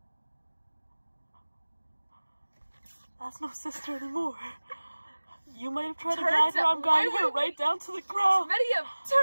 That's no sister anymore. You might have tried to guide her. I'm guiding her right down to the ground.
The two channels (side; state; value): both; inverted; correlation -1.00